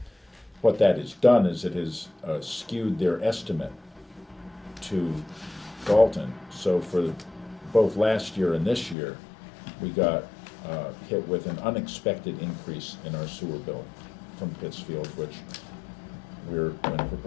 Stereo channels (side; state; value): right; drops out; at 9.0 s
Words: what that has done is it has skewed their estimate to Dalton. So for both last year and this year, we got hit with an unexpected increase in our sewer bill from Pittsfield, which we're going to